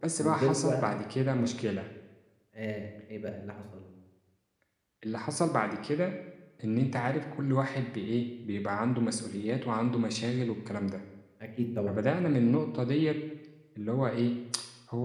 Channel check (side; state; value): both; identical; correlation 1.00